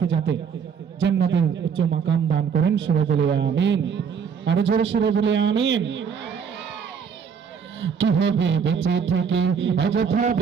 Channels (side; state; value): left; quieter; 6.7 dB